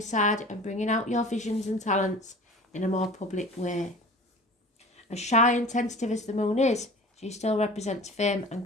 side and bringing out your visions and talents in a more public way. As shy and tentative as the moon is, she still represents fame and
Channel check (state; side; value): normal; both; correlation 0.41